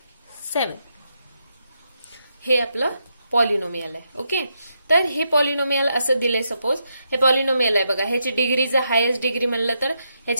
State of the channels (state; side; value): inverted; both; correlation -0.81